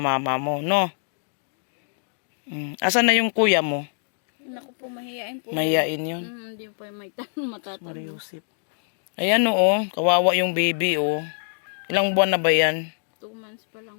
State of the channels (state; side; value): silent; right; digital silence